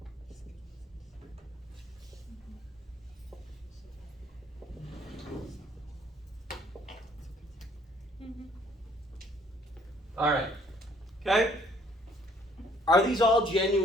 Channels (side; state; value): both; normal; correlation 0.62